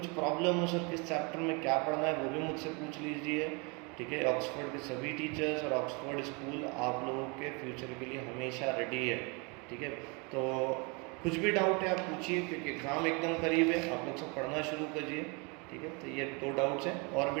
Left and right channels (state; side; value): quieter; left; 30.8 dB